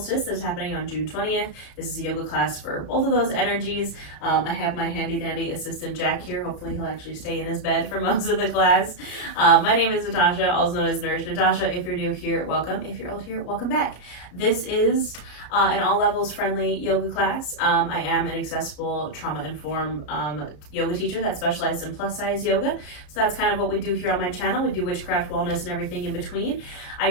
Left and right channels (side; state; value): right; late; 33 ms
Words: that's happening on June 20th. This is a yoga class for both of those energies. I have my handy dandy assistant Jack here. Hopefully he'll actually stay in his bed for most of the class. My name is Natasha, also known as Nourish Natasha. If you're new here, welcome. If you're old here, welcome back. This is an all levels friendly yoga class. I am an accessible trauma-informed yoga teacher that specializes in plus size yoga. So that's kind of what we do here on my channel. We do witchcraft, wellness, and everything in between. I